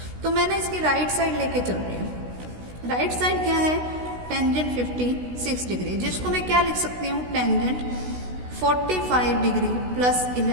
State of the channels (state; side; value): late; left; 16 ms